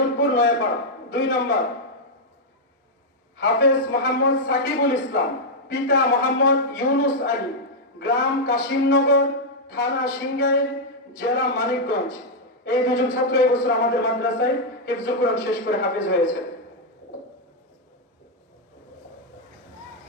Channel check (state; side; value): normal; both; correlation -0.03